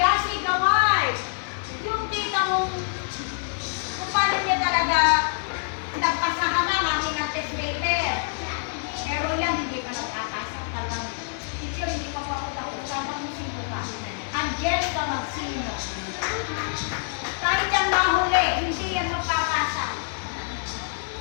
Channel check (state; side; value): silent; right; 56 dB below the other